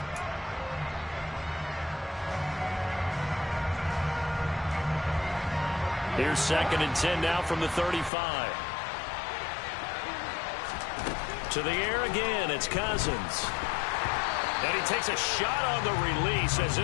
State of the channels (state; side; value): drops out; right; at 8.1 s